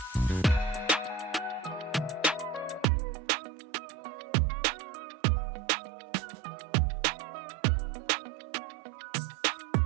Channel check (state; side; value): drops out; left; at 2.9 s